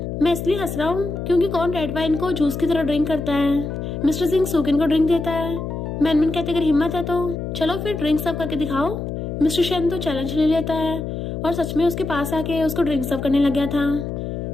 मैं इसलिए हंस रहा हूँ क्योंकि कौन रेड वाइन को जूस की तरह ड्रिंक करता है। मिस्टर सिंह सुकिन को ड्रिंक देता है। मैनमैन कहते अगर हिम्मत है तो चलो फिर ड्रिंक सर्व करके दिखाओ। मिस्टर शन तो चैलेंज ले लेता है और सच में उसके पास आके उसको ड्रिंक सर्व करने लग गया था।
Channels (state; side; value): noise; left; hum, 5 dB below the sound